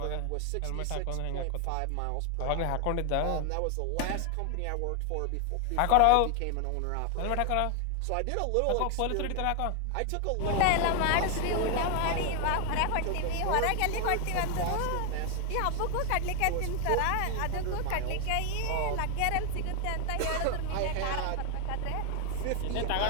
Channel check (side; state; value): both; different; correlation 0.00